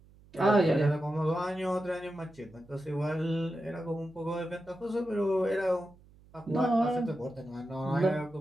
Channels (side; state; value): right; noise; hum, 26 dB below the sound